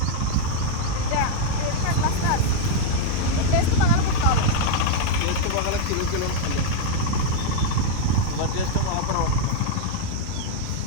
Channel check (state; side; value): different; both; correlation -0.01